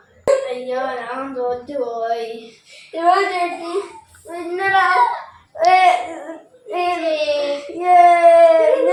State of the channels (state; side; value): identical; both; correlation 1.00